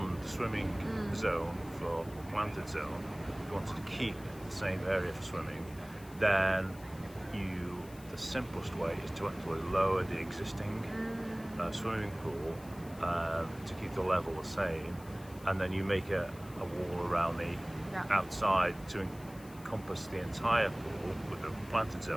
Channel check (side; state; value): left; noise; hiss, 21 dB below the sound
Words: the swimming zone for the planted zone. If you wanted to keep the same area for swimming, then the simplest way is to actually lower the existing swimming pool to keep the level the same, and then you make a wall around the outside to encompass the entire pool with the planted